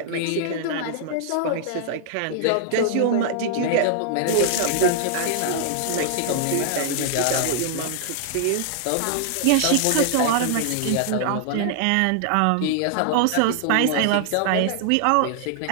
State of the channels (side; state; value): both; different; correlation -0.01